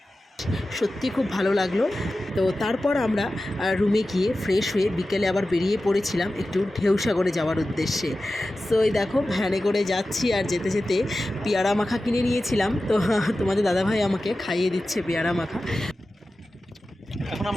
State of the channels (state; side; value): normal; both; correlation 0.94